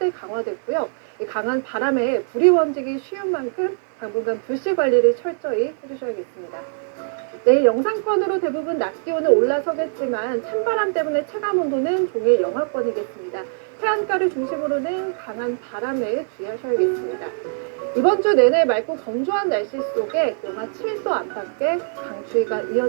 강화됐고요. 이 강한 바람에 불이 번지기 쉬운 만큼 당분간 불씨 관리를 철저히 해주셔야겠습니다. 내일 영상권으로 대부분 낮 기온은 올라서겠지만 찬바람 때문에 체감온도는 종일 영하권이겠습니다. 해안가를 중심으로는 강한 바람에 주의하셔야겠습니다. 이번 주 내내 맑고 건조한 날씨 속에 영하 7도 안팎의 강추위가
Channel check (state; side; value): silent; left; digital silence